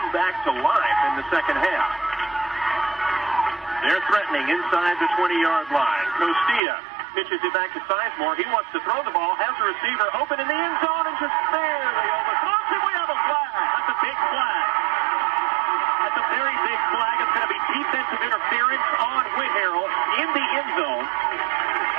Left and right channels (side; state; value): left; drops out; at 6.6 s